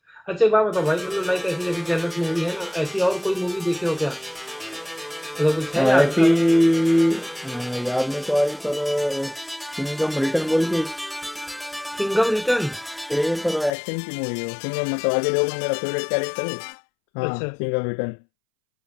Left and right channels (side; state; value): right; drops out; at 13.7 s